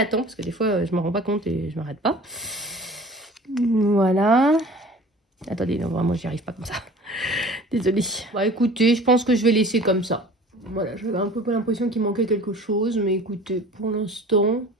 temps parce que des fois, je ne me rends pas compte et je ne m'arrête pas. Voilà. Attendez, non, vraiment, j'y arrive pas comme ça. Désolée. Bah écoutez, je pense que je vais laisser comme ça. Voilà, j'avais un peu l'impression qu'il manquait quelque chose, mais écoutez, pour l'instant,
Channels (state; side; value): normal; both; correlation 0.44